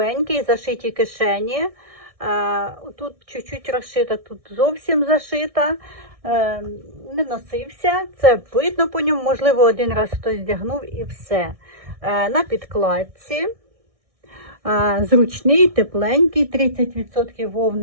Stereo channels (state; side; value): late; left; 1.6 ms